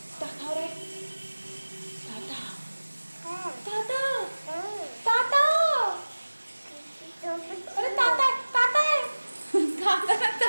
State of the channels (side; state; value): both; inverted; correlation -1.00